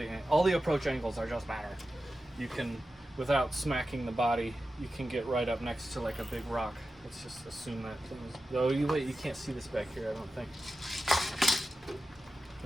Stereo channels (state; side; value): normal; both; correlation 0.93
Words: approach angles are just better. You can, without smacking the body, you can get right up next to like a big rock. Let's just assume that things. Oh, you can't see this back here, I don't think.